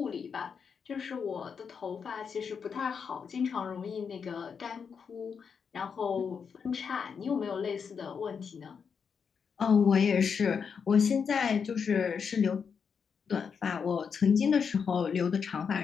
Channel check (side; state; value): right; quieter; 6.4 dB